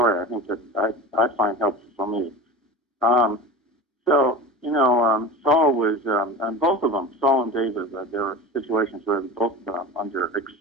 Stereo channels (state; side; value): normal; both; correlation 0.31